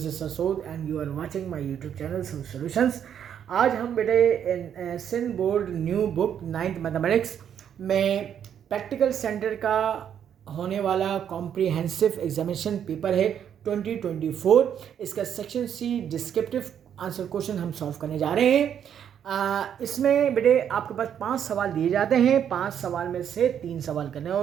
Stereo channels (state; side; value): quieter; left; 8.9 dB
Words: is Sasood and you are watching my YouTube channel Sood Solutions. आज हम बेटे Sindh board new book 9th mathematics में practical centre का होने वाला comprehensive examination paper है 2024। इसका section C descriptive answer question हम सॉल्व करने जा रहे हैं। इसमें बेटे आपके पास 5 सवाल दिए जाते हैं। 5 सवाल में से 3 सवाल करने